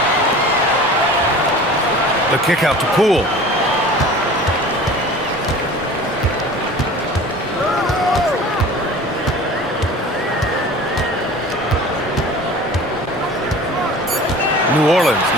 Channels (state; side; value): normal; both; correlation 0.41